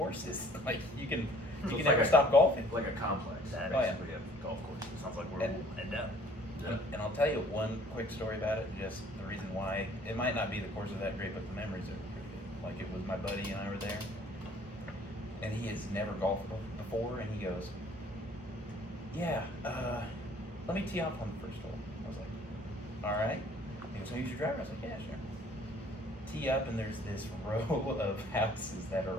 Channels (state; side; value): normal; both; correlation 0.56